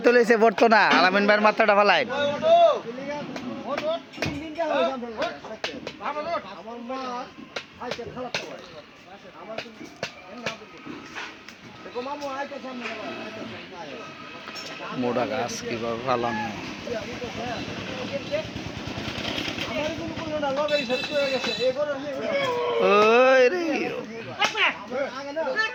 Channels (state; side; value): identical; both; correlation 1.00